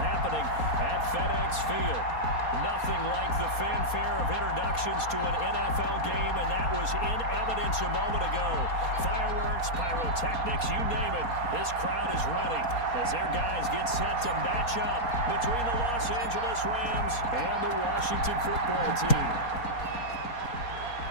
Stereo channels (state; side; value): late; right; 4.2 ms